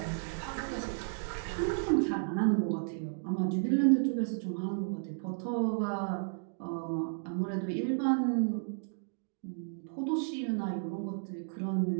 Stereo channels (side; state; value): left; silent; digital silence